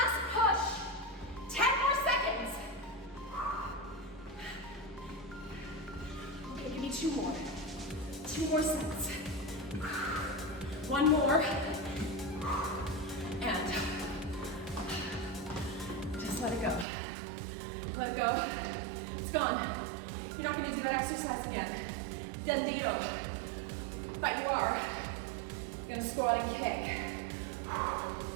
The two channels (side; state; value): left; drops out; at 16.9 s